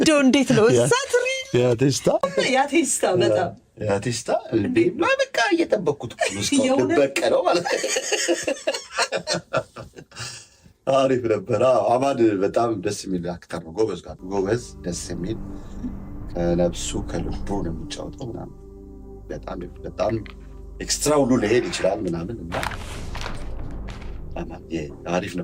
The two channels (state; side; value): identical; both; correlation 1.00